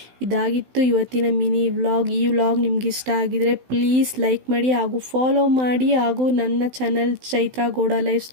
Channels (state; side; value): late; left; 16 ms